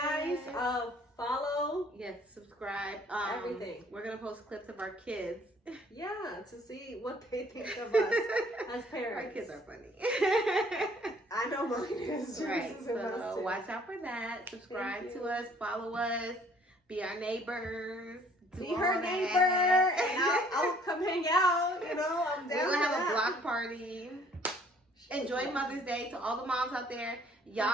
guys. it. Follow. Yes, subscribe. Everything. We're gonna post clips of our kids. Yeah, to see what they think of us as parents. Our kids are funny. I know mine is. Right. Is So watch out for that. Subscribe to us. Follow us. Be our neighbors. Be her neighbor, and I'll come hang out. You know, I'm down. We're gonna have that. a block party. Enjoy Mother's Day to all the moms out there. Y'all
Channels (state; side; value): normal; both; correlation 0.59